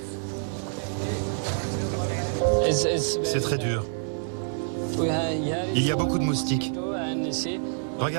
C'est très dur. Il y a beaucoup de moustiques.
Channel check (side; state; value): left; silent; digital silence